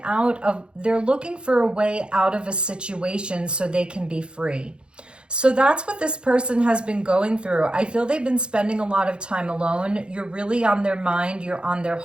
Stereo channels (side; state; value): left; late; 0.054 ms